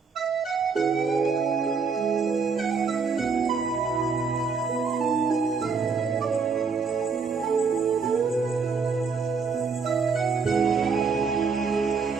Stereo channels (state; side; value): quieter; left; 5.1 dB